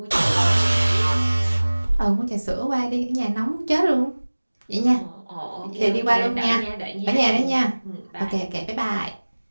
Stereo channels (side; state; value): both; inverted; correlation -1.00